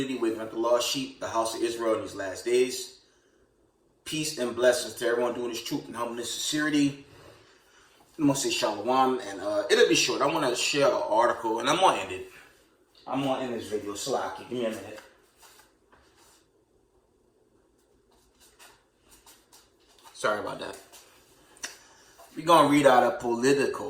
waking up the lost sheep, the house of Israel in these last days. Peace and blessings to everyone doing this truth and humbleness, sincerity. I'm going to say shalom, and it'll be short. I want to share an article, and I'm going to end it. I'm going to end this video. Salaki, give me a minute. Sorry about that. We're going to read out a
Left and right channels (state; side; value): identical; both; correlation 1.00